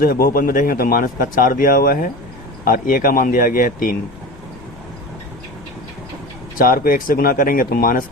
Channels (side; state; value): left; noise; rumble, 20 dB below the sound